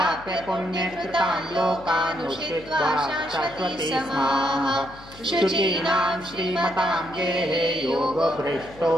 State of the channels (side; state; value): left; noise; hum, 20 dB below the sound